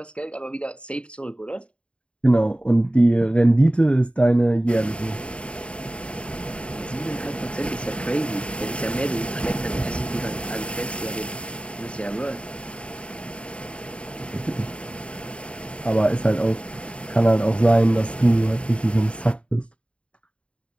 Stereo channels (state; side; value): late; right; 0.059 ms